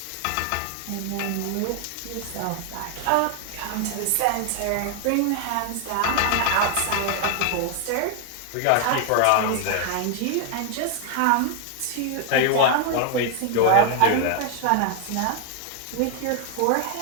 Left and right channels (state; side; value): different; both; correlation 0.00